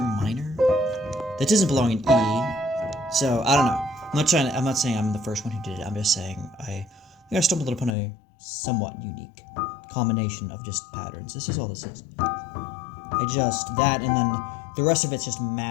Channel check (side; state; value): right; drops out; at 8.0 s